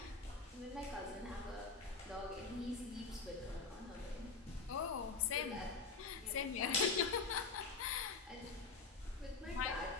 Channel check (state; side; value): quieter; right; 4.5 dB